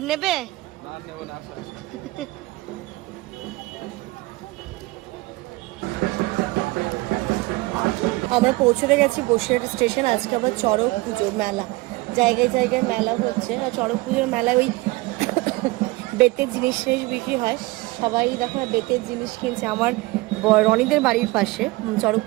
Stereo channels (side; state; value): left; quieter; 21.8 dB